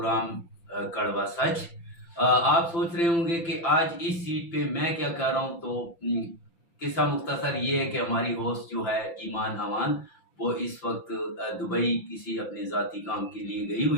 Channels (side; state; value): right; late; 5.9 ms